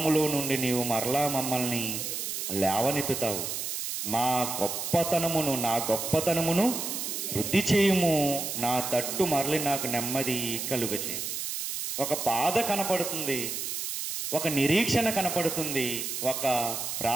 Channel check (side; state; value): right; noise; hiss, 4 dB below the sound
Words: నుండి నీవు మరలా మమ్మల్ని లేవనెత్తుతావు, నా గొప్పతనమును వృద్ధి చేయుము, నా తట్టు మరలి నాకు నెమ్మది కలుగచేయు. ఒక బాధ కనపడుతుంది, ఒక నిరీక్షణ కనపడుతుంది, ఒక